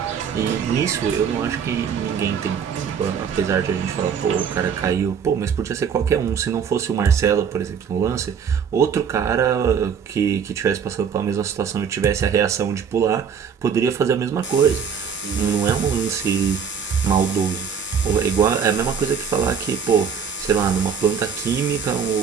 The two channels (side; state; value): left; quieter; 6.9 dB